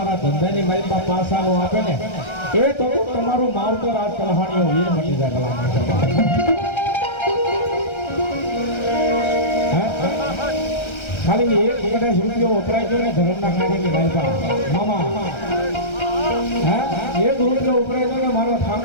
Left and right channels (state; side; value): late; right; 1.3 ms